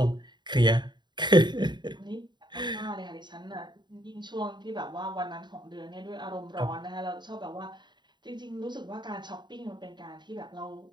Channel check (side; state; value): left; late; 0.22 ms